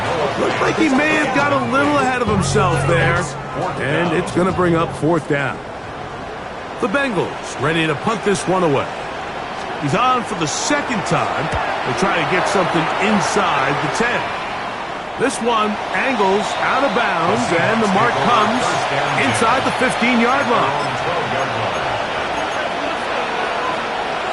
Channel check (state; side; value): identical; both; correlation 1.00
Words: Looks like he may have got a little ahead of himself there. And it's going to bring up 4th down. The Bengals ready to punt this one away. He's on for the 2nd time. They'll try to get something inside the 10. This one angles out of bounds, and the mark comes inside the 15-yard line.